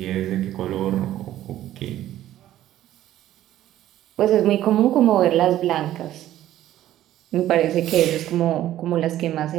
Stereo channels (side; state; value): left; quieter; 13.2 dB